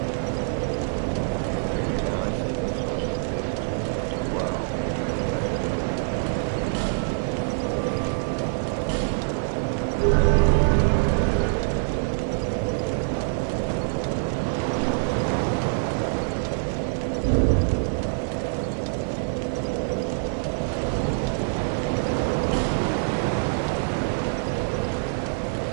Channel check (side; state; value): left; silent; 56 dB below the other